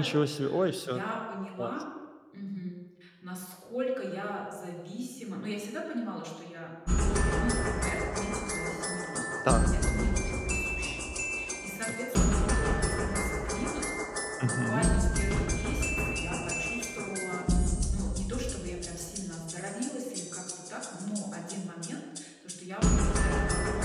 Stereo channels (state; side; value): identical; both; correlation 1.00